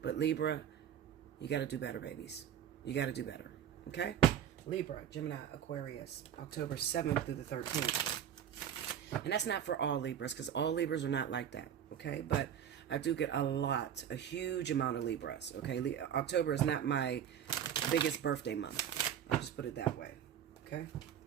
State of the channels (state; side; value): quieter; left; 9.4 dB